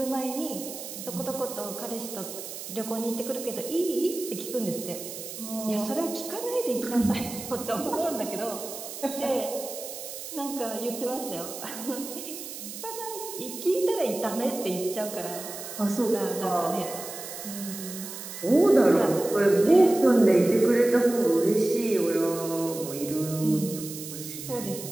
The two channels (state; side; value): noise; right; hiss, 10 dB below the sound